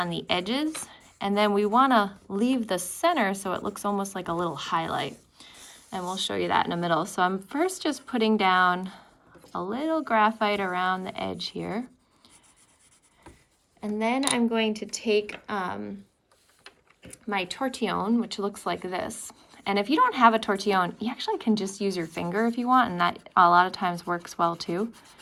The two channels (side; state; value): both; identical; correlation 1.00